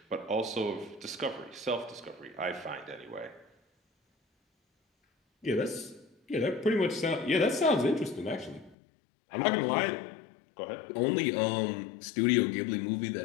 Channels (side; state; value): right; drops out; at 8.8 s